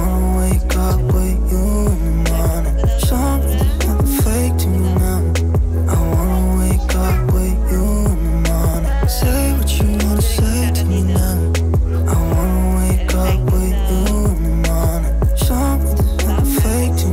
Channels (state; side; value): identical; both; correlation 1.00